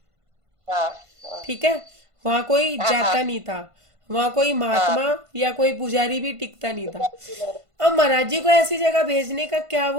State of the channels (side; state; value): left; late; 1.5 ms